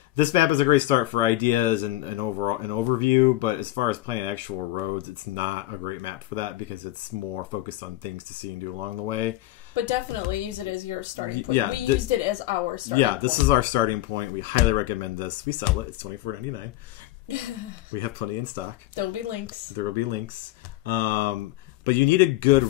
this map is a great start for ideas and overall an overview, but as far as planning actual roads, it's not a great map for that because it's more focused on things to see and do along the way. But definitely use it as your starting point. Yeah, we used it as our starting point. Yeah, this is our starting point. We highly recommend this. We sell it. It's $24.99. We have plenty in stock. There will be links. There will be links. But you need a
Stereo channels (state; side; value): quieter; right; 16.3 dB